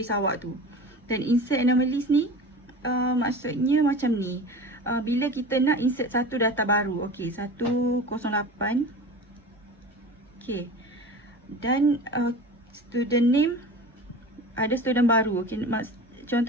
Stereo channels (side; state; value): both; normal; correlation 0.35